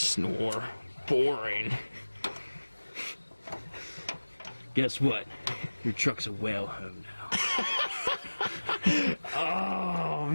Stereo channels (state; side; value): inverted; both; correlation -1.00